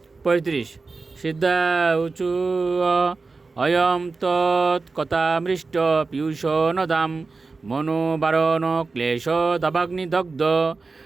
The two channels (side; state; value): left; quieter; 4.0 dB